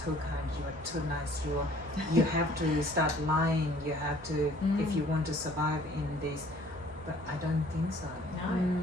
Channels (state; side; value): normal; both; correlation 0.55